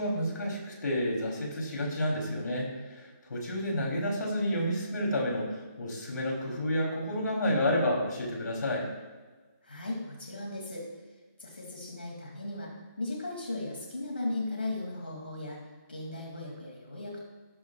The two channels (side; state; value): both; inverted; correlation -0.71